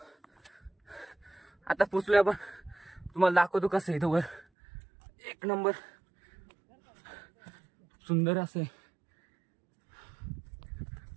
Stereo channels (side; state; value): left; drops out; at 4.5 s